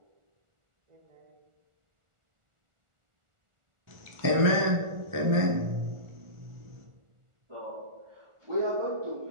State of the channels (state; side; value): late; left; 1.4 ms